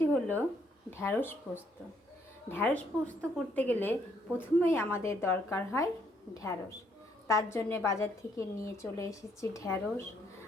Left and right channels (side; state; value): both; normal; correlation 0.70